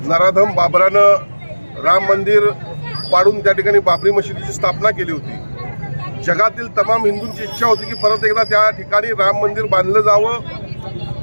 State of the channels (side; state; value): both; inverted; correlation -1.00